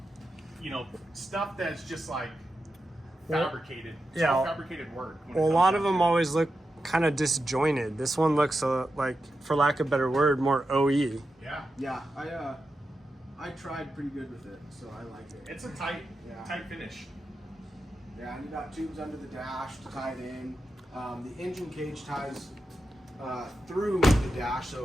you know, stuff that's just like fabricated. It's all fabricated work. Well, a lot of them always look kind of disjointed. This one looks like, for lack of a better word, more OE. Yeah. Yeah, I tried pretty good with it, so I like it. It's a tight finish. Yeah, and you got tubes under the dash to tie it in. The engine cage ties through the dash,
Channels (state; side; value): normal; both; correlation 0.89